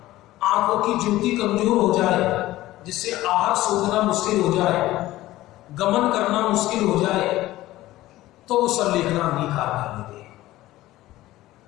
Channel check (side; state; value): right; quieter; 16.4 dB